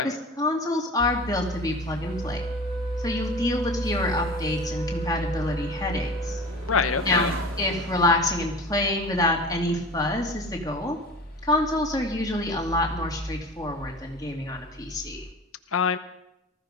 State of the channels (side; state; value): both; normal; correlation 0.36